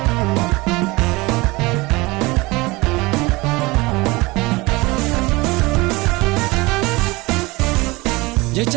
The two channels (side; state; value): left; quieter; 22.8 dB